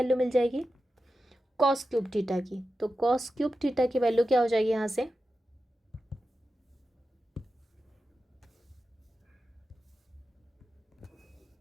मिल जाएगी, कॉस क्यूब थीटा की। तो कॉस क्यूब थीटा की वैल्यू क्या हो जाएगी यहाँ से,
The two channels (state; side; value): normal; both; correlation 0.91